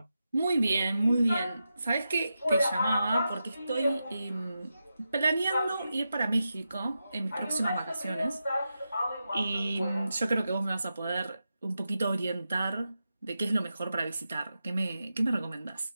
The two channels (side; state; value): both; inverted; correlation -0.89